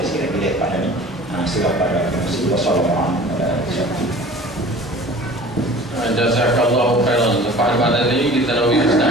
pada ni. Surah pada Rasulullah sallallahu alaihi wasallam. Jazakallahu khairan. Pada pada ini kita nak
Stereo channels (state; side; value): normal; both; correlation 0.44